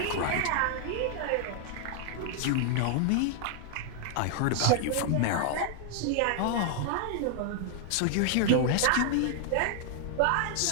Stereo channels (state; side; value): different; both; correlation 0.00